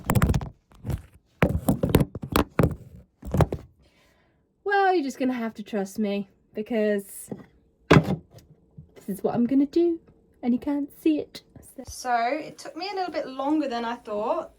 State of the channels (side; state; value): both; identical; correlation 1.00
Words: Well, you're just gonna have to trust me, because this is what I'm gonna do and you can't see it. So it took me a little bit longer than I thought,